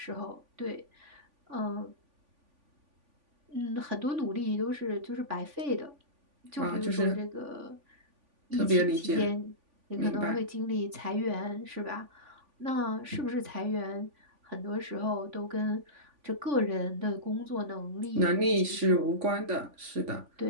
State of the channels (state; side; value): late; left; 3.5 ms